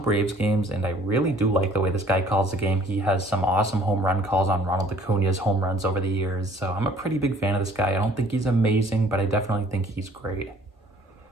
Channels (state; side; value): normal; both; correlation 0.55